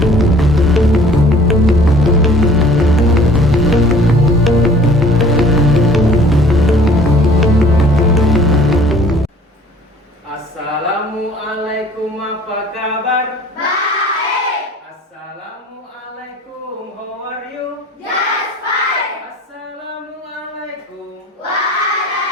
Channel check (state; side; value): normal; both; correlation 0.52